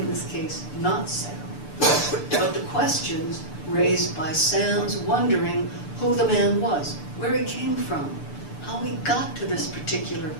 this case, not Sam, but the questions raised by Sam's wondering who the man was, where he came from, how he got to this particular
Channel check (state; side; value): late; right; 6.8 ms